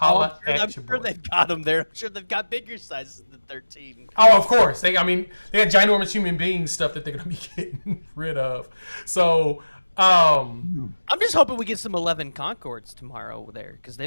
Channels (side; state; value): both; inverted; correlation -1.00